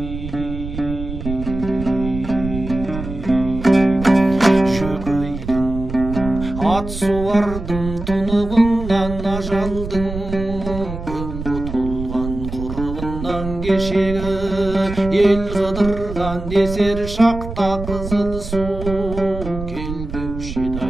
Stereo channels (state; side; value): noise; right; rumble, 8 dB below the sound